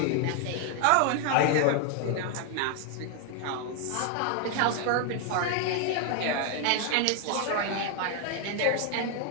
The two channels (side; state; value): both; different; correlation 0.00